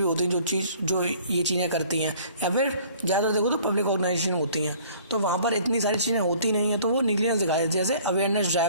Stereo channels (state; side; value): inverted; both; correlation -0.53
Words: होती हैं जो ये चीज़ें करती हैं, या फिर ज़्यादा देखो तो पब्लिक ऑर्गेनाइजेशन होती हैं, तो वहाँ पर इतनी सारी चीज़ें होती नहीं हैं, तो वो निग्लिजेंस दिखाए। जैसे अवेयरनेस